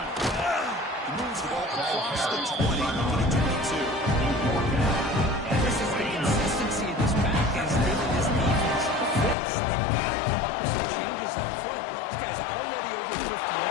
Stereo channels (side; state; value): right; drops out; at 9.3 s